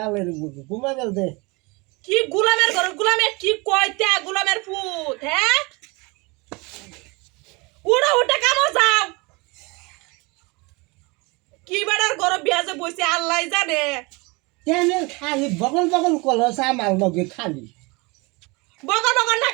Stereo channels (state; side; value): quieter; left; 26.8 dB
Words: ঘুমা গেল দে। কি গোলামের ঘর, গোলামের কি কয়টা গোলামের ফুট, হ্যাঁ উড়া উঠে কামো যাও। কি বেড়ার ঘর বিয়া যে বইছে আল্লাহ জানে। কেন খালি বগল বগল কলস আমার লগে খালি বগর বগর না